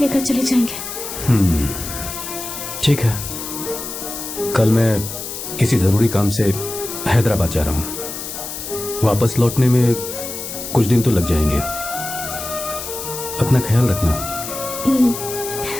चले जाएंगे। ठीक है, कल मैं किसी जरूरी काम से हैदराबाद जा रहा हूँ। वापस लौटने में कुछ दिन तो लग जाएंगे। अपना ख्याल रखना।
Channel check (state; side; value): noise; left; hiss, 8 dB below the sound